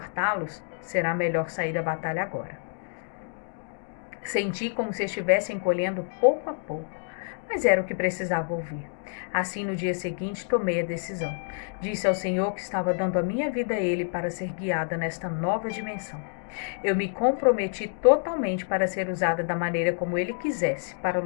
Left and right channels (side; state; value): right; silent; digital silence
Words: será melhor sair da batalha agora. Senti como se estivesse encolhendo pouco a pouco, mas era o que precisava ouvir. Assim, no dia seguinte, tomei a decisão. Disse ao Senhor que estava dando a minha vida a Ele para ser guiada nesta nova dimensão. Eu me comprometi totalmente para ser usada da maneira como Ele quisesse, para